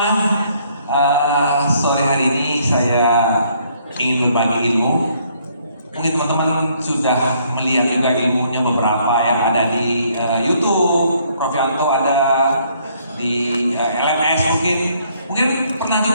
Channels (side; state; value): both; inverted; correlation -0.66